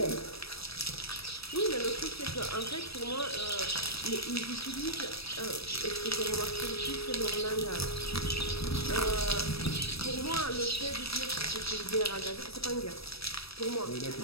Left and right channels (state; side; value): late; right; 0.77 ms